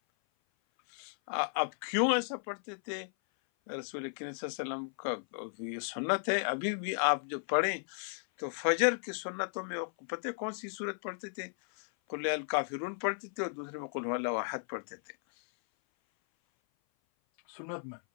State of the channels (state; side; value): silent; right; 55 dB below the other